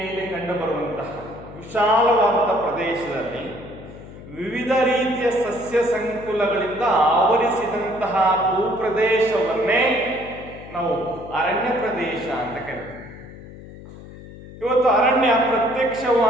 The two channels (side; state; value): left; noise; hum, 16 dB below the sound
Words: ಕಂಡುಬರುವಂತಹ ವಿಶಾಲವಾದ ಪ್ರದೇಶದಲ್ಲಿ ವಿವಿಧ ರೀತಿಯ ಸಸ್ಯ ಸಂಕುಲಗಳಿಂದ ಆವರಿಸಿದಂತಹ ಭೂಪ್ರದೇಶವನ್ನೇ ನಾವು ಅರಣ್ಯ ಪ್ರದೇಶ ಅಂತ ಕರಿತೀವಿ. ಇವತ್ತು ಅರಣ್ಯ